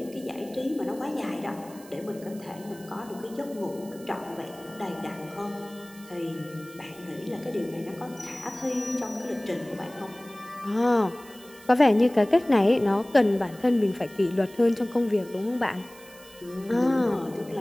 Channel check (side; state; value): right; noise; hiss, 21 dB below the sound